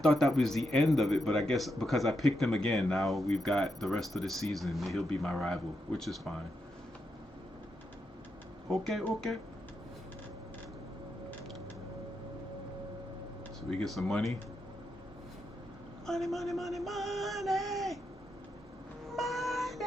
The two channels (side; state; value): both; normal; correlation 0.83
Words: that was the end of it, but I guess because I picked him again, now we've got the rest of the season. He'll be my rival, which is fine. Okay, okay. So we get some money. Money, money, money, money.